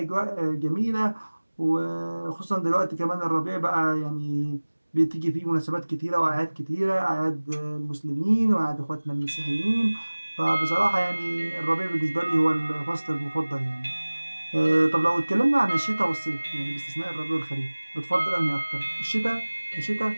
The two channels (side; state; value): both; inverted; correlation -1.00